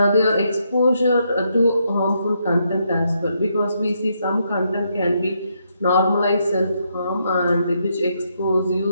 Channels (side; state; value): both; inverted; correlation -0.77